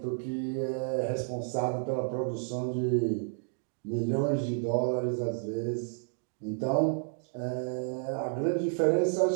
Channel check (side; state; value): left; silent; digital silence